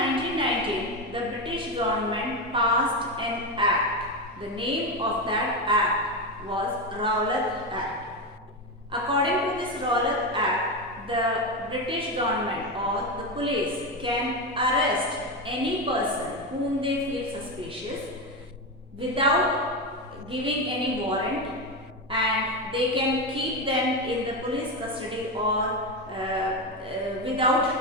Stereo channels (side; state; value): both; normal; correlation 0.14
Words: the British government passed an act. The name of that act was Rowlatt Act. According to this Rowlatt Act, the British government or the police can arrest any person whom they feel suspicious without giving any warrant, and they can keep them in the police custody or